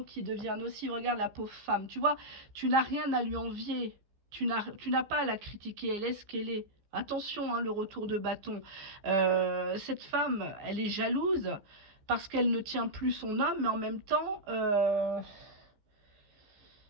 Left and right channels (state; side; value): late; left; 15 ms